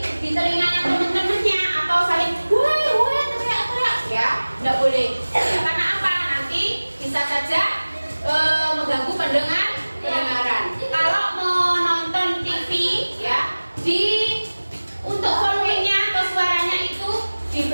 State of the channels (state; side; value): inverted; both; correlation -1.00